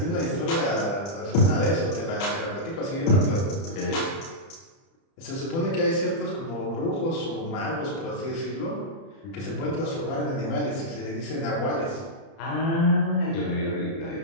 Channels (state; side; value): late; right; 30 ms